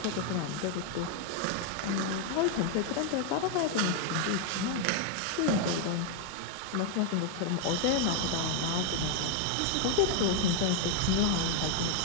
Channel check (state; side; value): different; both; correlation 0.00